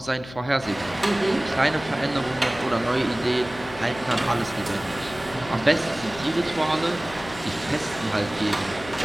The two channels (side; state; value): left; noise; hum, 16 dB below the sound